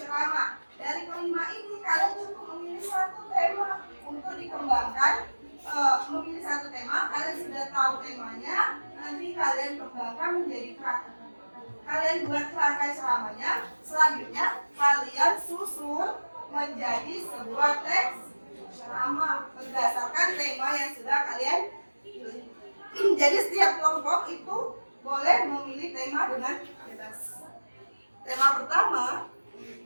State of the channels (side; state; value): both; inverted; correlation -1.00